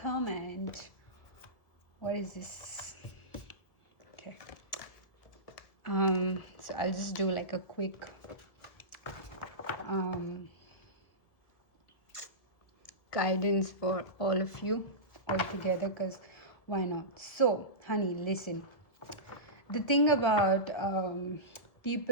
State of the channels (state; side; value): late; right; 1.7 ms